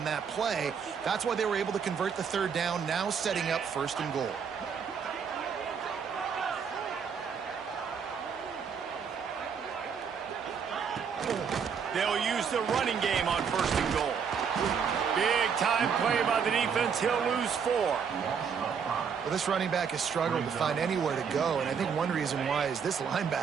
that play. That's why they were able to convert the 3rd down, now setting up 1st and goal. They'll use the running game on 1st and goal. Big time play by the defense. He'll lose 4. Well, this running back has struggled to find anywhere to go, and I think one reason why is this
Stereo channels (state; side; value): quieter; left; 6.7 dB